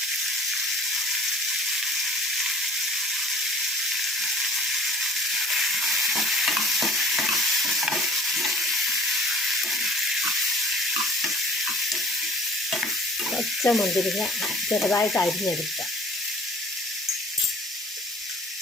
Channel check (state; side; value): normal; both; correlation 0.48